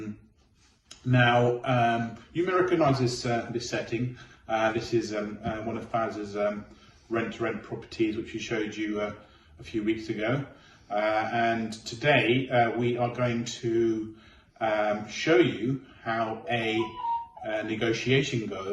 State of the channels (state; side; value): identical; both; correlation 1.00